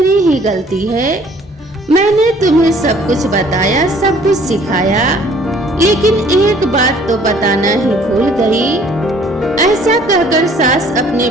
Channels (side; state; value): both; normal; correlation 0.57